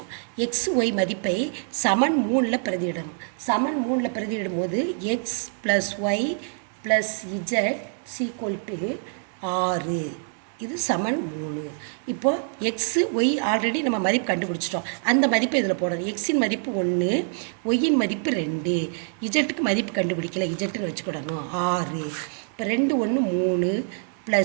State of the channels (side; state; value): left; silent; digital silence